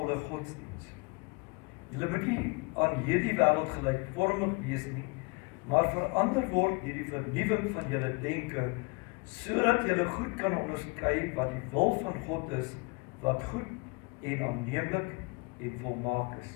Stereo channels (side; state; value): right; quieter; 29.3 dB